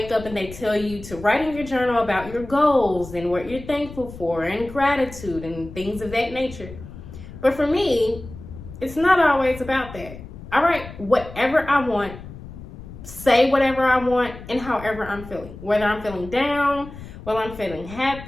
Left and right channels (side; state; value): left; noise; rumble, 14 dB below the sound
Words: up and they tell you to write in your journal about your goals and what you're thankful for and gratitude and things of that nature. But for me, it's not always about that. I write whatever I want, say whatever I want, and however I'm feeling. Whether I'm feeling down, whether I'm feeling